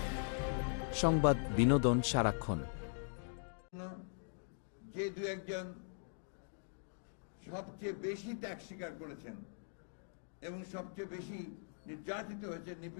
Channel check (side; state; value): right; silent; digital silence